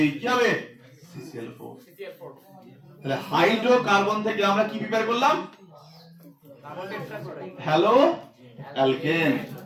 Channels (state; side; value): identical; both; correlation 1.00